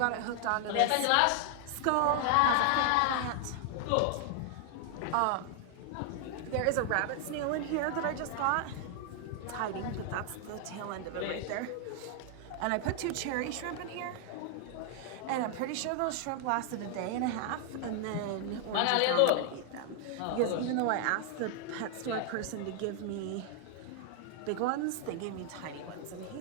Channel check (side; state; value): both; different; correlation 0.00